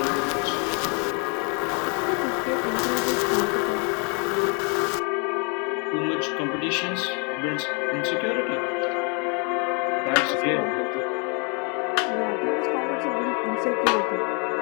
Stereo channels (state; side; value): quieter; right; 36.0 dB